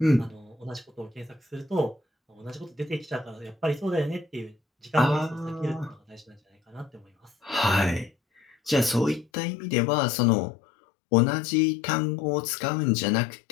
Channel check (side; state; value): right; drops out; at 9.2 s